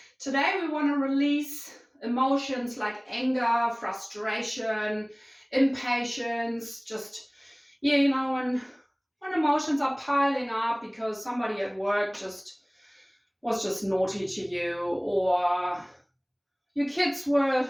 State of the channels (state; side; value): identical; both; correlation 1.00